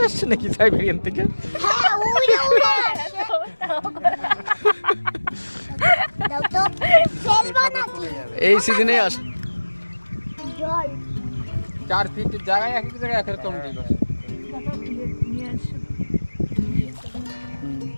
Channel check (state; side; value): inverted; both; correlation -1.00